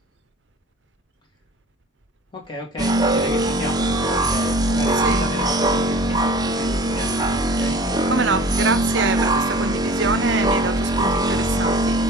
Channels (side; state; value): both; normal; correlation 0.43